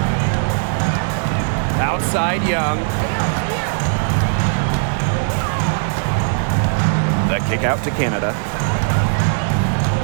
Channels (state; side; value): silent; left; digital silence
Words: Outside Young. The kick out to Canada.